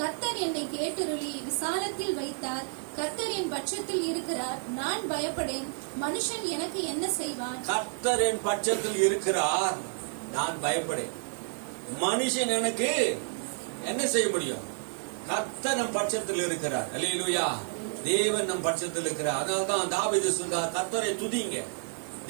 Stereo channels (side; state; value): left; silent; 58 dB below the other